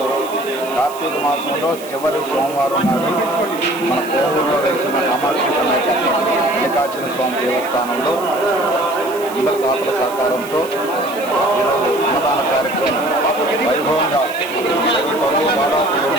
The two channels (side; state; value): right; noise; hiss, 16 dB below the sound